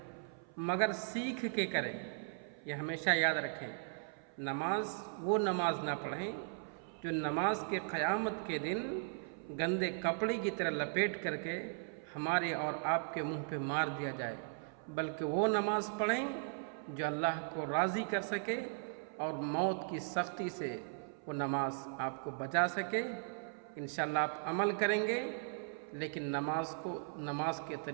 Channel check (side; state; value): left; silent; 53 dB below the other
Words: مگر سیکھ کے کریں۔ یہ ہمیشہ یاد رکھیں، وہ نماز نہ پڑھیں جو نماز کے قیامت کے دن گندے کپڑے کی طرح لپیٹ کر کے ہمارے اور آپ کے منہ پہ مار دیا جائے، بلکہ وہ نماز پڑھیں جو اللہ کو راضی کر سکے اور موت کی سختی سے وہ نماز آپ کو بچا سکے۔ انشاءاللہ آپ عمل کریں گے، لیکن نماز کو نماز کے